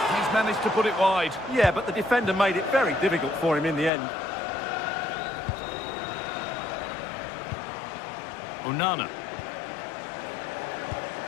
he's managed to put it wide. Yeah, but the defender made it very difficult for him in the end. Onana.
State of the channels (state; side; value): drops out; right; at 3.9 s